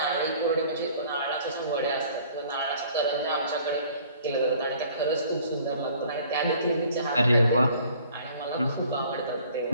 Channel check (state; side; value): inverted; both; correlation -0.54